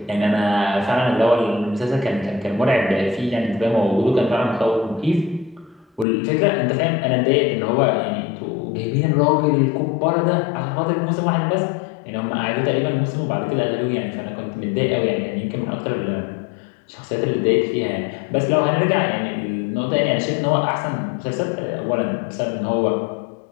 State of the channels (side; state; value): right; drops out; at 6.1 s